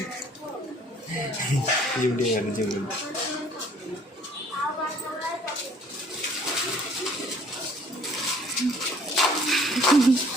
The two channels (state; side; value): normal; both; correlation 0.57